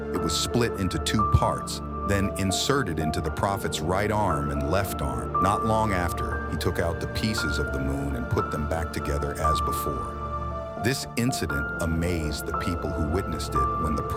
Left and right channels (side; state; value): both; identical; correlation 1.00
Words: it was split into 2 parts, then inserted into the Prophet's right arm and left arm. Not long after, he took out the pieces of the moon and put them back together as before. This incident amazed the people who witnessed it when the